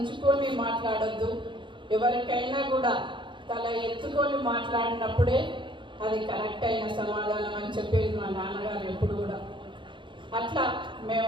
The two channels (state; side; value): late; left; 0.23 ms